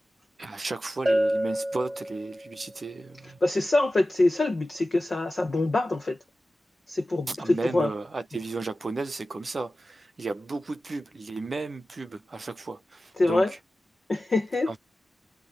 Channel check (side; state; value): both; normal; correlation 0.95